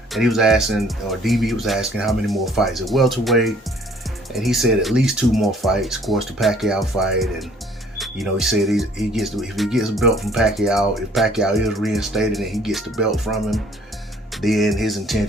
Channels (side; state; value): both; normal; correlation 0.58